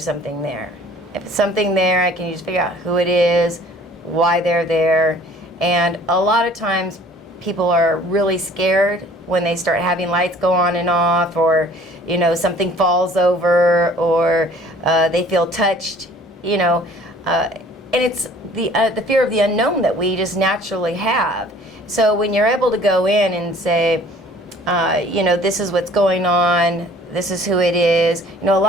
something there. If it's something there, I can just figure out who it is, why they're there. And a lot of times people are really scared when they start having lights go on and off, or something falls over, or they feel touched, and it's the fear of the unknown that we just naturally have. So when you're able to go in and say, this is what's going on, this is who it is. A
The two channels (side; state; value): both; normal; correlation 0.52